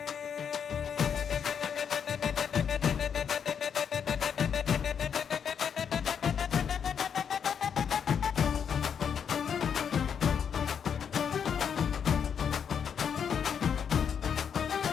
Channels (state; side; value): quieter; right; 7.5 dB